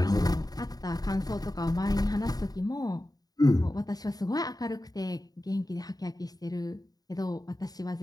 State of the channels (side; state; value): right; late; 0.18 ms